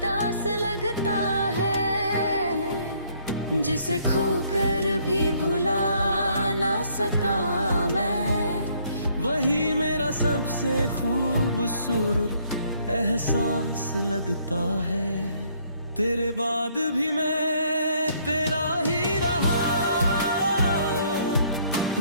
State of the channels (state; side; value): inverted; both; correlation -0.65